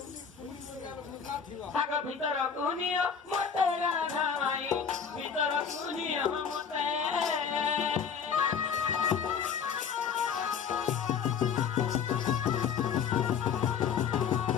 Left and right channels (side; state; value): right; quieter; 6.9 dB